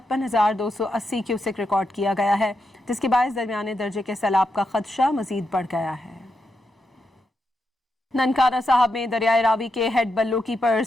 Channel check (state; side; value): normal; both; correlation 0.84